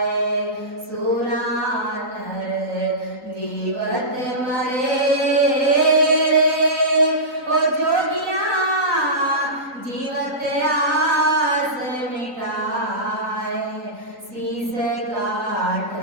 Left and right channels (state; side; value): late; left; 3.9 ms